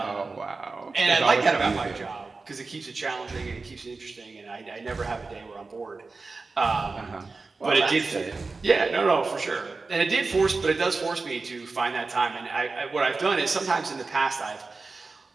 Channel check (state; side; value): quieter; left; 3.9 dB